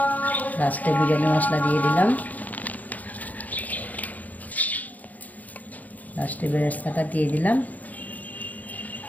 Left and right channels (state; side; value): late; right; 0.078 ms